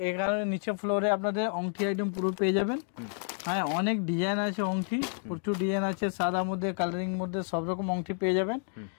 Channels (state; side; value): silent; right; 58 dB below the other